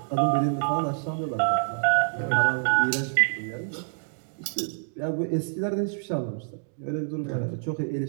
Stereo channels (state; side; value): silent; left; digital silence